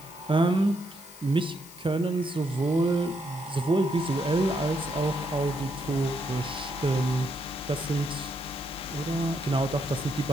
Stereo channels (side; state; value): left; noise; hiss, 19 dB below the sound